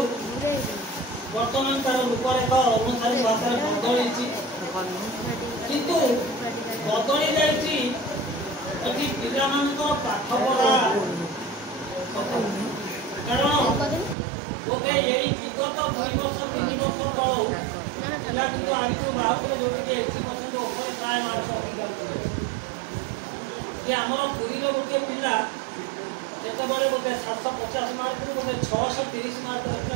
ବର୍ତ୍ତମାନ ତାର ରୂପରେଖ ଅନୁସାରେ ଭାଷାରେ ବଦଳିଛି, କିନ୍ତୁ ବଦଳି ଯାଇଛି ଏଠି ପିଲାମାନଙ୍କର ପାଠପଢ଼ା। କାରଣ ବୋଧେ ଏଇ ବିଗତ 2 ବର୍ଷ 3 ବର୍ଷ ତଳୁ ପିଲା କିନ୍ତୁ ଆଗକୁ ବାହାରୁଥିଲେ ଯୋଉଠିକି 80% ଉପରେ ପ୍ରାୟ ମାର୍କ ରଖିପାରୁଥିଲେ। ଯେ ଆମର ପୁରୀରେ ଗୋଟିଏ ପିଲା ଯେତେବେଳେ ଗୋଟେ 750 ମାର୍କରୁ ଗୋଟେ 630 ମାର୍କ ରଖିଥିଲା,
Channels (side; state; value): left; drops out; at 14.2 s